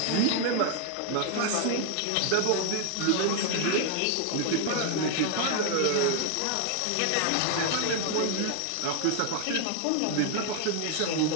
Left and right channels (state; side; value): different; both; correlation 0.00